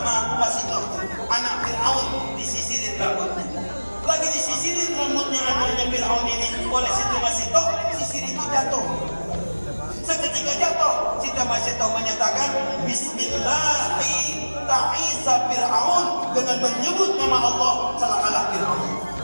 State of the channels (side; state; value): both; inverted; correlation -1.00